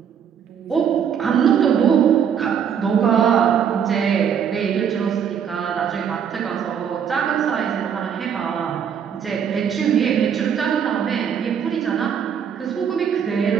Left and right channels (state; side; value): quieter; left; 7.9 dB